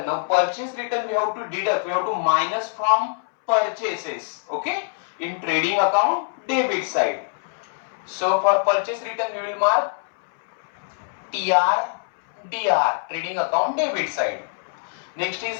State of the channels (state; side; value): silent; right; 62 dB below the other